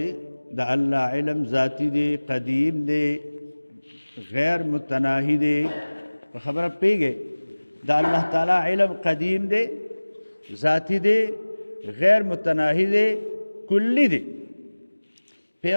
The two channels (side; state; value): both; inverted; correlation -1.00